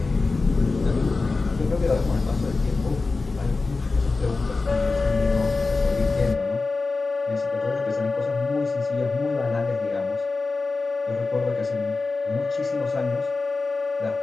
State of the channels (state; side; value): quieter; right; 3.8 dB